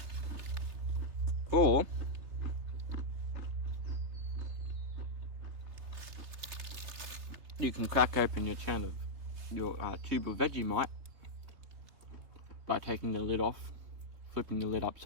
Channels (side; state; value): left; late; 3.3 ms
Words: Or you can crack open your tube of Vegemite by taking the lid off, flipping the lid